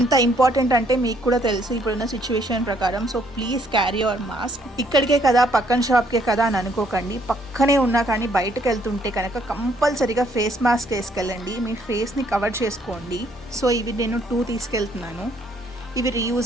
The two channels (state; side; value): normal; both; correlation 0.67